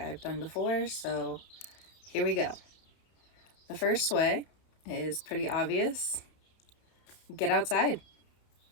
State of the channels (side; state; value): right; late; 31 ms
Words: done before, so here we go. The first way is pretty obvious. Get outside.